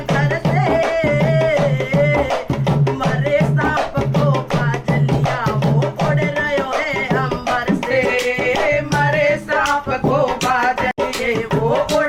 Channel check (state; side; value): identical; both; correlation 1.00